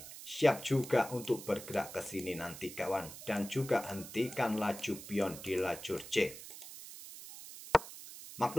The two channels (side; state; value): right; noise; hiss, 13 dB below the sound